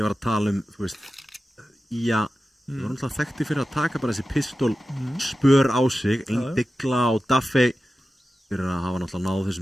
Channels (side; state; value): both; normal; correlation 0.93